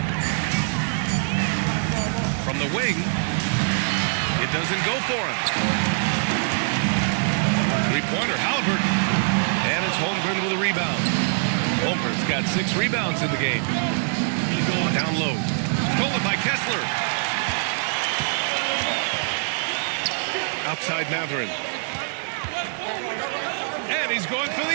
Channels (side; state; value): left; silent; 63 dB below the other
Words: From the wing, it doesn't go for him. Three-pointer, Halliburton. And it's Holmgren with a rebound. Holmgren's got 6 rebounds in the game. Down low. Stolen by Kessler. Outside Matherin. And he's going for